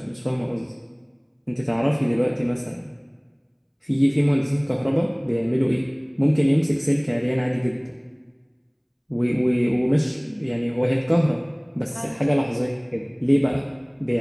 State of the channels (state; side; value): identical; both; correlation 1.00